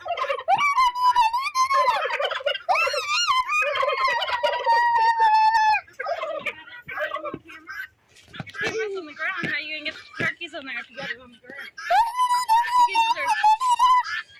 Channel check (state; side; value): identical; both; correlation 1.00